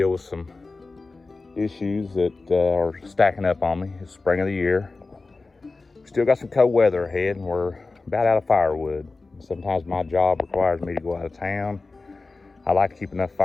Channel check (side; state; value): right; quieter; 3.7 dB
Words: with some issues that are stacking up on me. It's spring of the year. Still got some cold weather ahead and we're about out of firewood. Sometimes my job requires me to go out of town. I like to keep enough